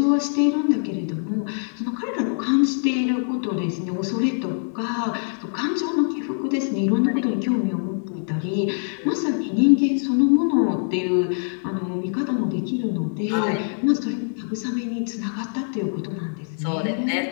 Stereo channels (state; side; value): silent; right; digital silence